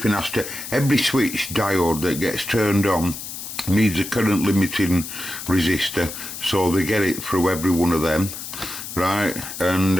has to, every switch diode that gets turned on needs a current limiting resistor, so they get it through every one of them, right? And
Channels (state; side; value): noise; left; hiss, 9 dB below the sound